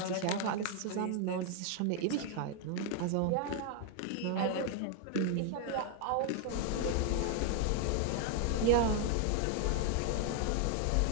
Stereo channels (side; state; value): both; different; correlation 0.00